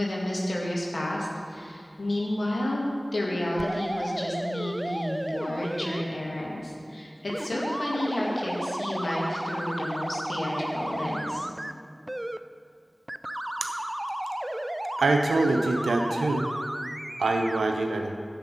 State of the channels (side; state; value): both; normal; correlation 0.96